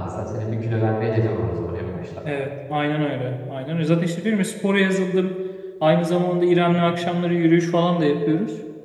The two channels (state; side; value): identical; both; correlation 1.00